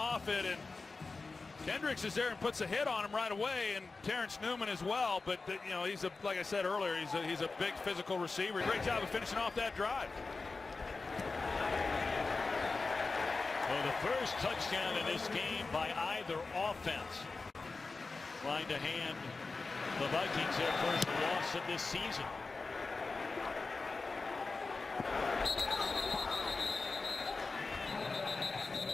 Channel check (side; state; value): right; quieter; 3.9 dB